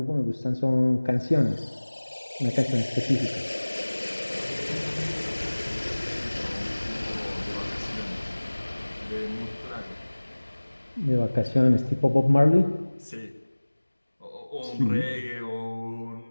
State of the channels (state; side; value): inverted; both; correlation -1.00